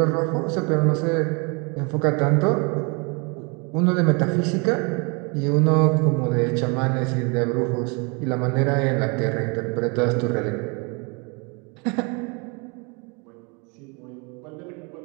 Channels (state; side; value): quieter; left; 31.6 dB